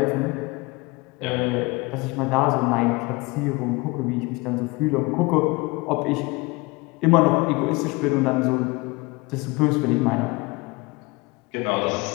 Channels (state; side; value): quieter; right; 24.9 dB